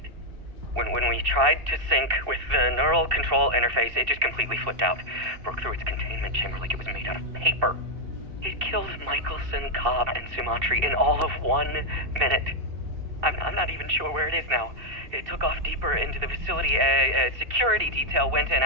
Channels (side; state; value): left; late; 2.7 ms